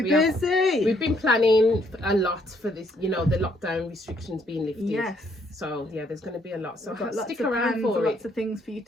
busy. We've been planning a lot for this, the lockdown restrictions being lifted. Yes. So yeah, there's going to be a lot. So we've got stick around for it. Lots of things for you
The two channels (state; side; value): normal; both; correlation 0.69